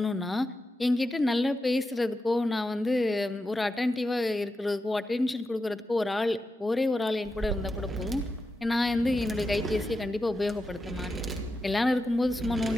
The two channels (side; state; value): both; normal; correlation 0.89